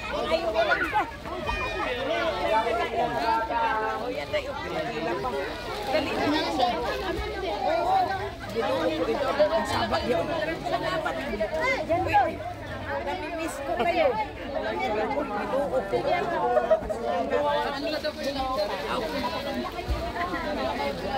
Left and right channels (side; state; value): both; identical; correlation 1.00